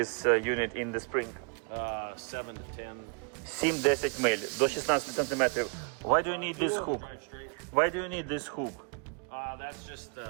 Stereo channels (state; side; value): quieter; left; 37.5 dB